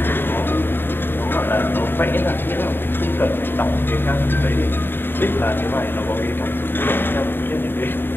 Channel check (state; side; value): late; right; 0.099 ms